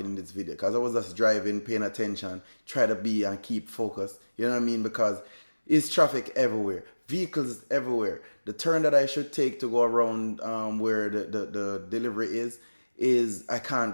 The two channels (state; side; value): inverted; both; correlation -1.00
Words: in this video because I was just driving, paying attention, try to be and keep focused. You know what I mean? Because it's traffic everywhere, vehicles everywhere. The turn that I should take to go around where the delivery is I can't